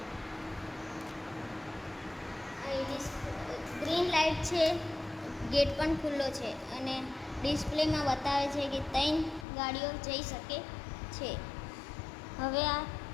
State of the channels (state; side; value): drops out; right; at 9.5 s